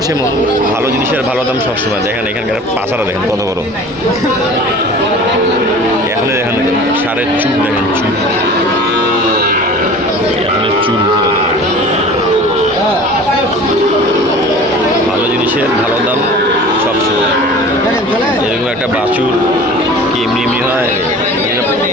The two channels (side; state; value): both; normal; correlation 0.42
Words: সেমন। ভালো জিনিসের ভালো দাম সবসময়। দেখেন এখানকার পাছারা দেখেন কত বড়। এখনই দেখেন সারের চুল দেখেন, চুল এখনের চুল। ভালো জিনিসের ভালো দাম সবসময়। এরকম একটা বাছুর কি এমনি এমনি হয়?